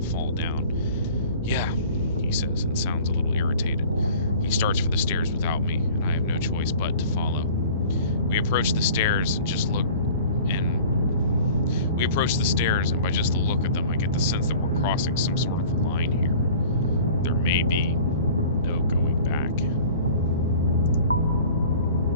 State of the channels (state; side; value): inverted; both; correlation -0.45